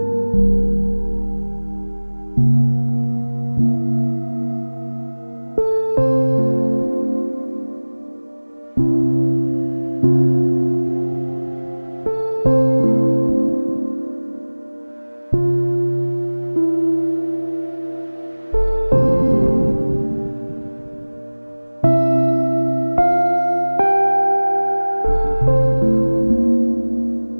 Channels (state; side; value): inverted; both; correlation -1.00